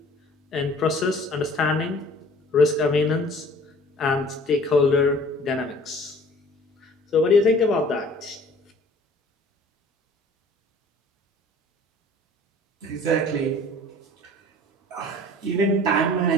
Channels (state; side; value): normal; both; correlation 0.49